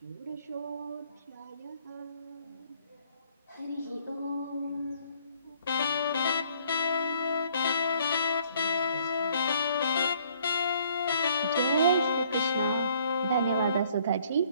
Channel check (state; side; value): inverted; both; correlation -0.62